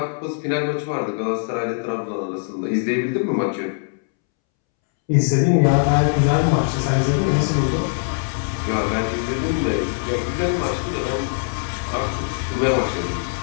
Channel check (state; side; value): silent; right; 65 dB below the other